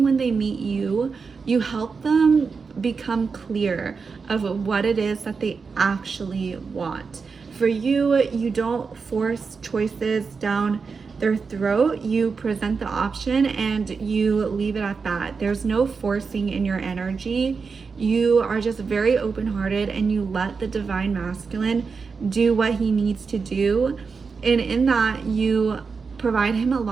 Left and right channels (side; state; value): left; quieter; 5.1 dB